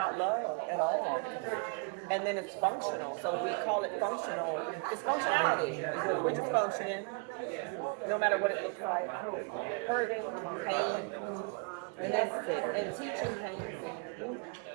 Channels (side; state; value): left; quieter; 33.5 dB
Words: love at all. And then it's functional. So we call it functional. It's functionality. We're just functioning, no matter what it looks like. Hurting, pain, and that's it. And teaching pain.